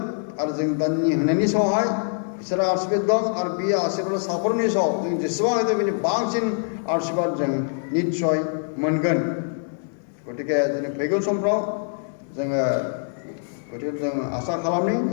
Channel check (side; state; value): right; silent; digital silence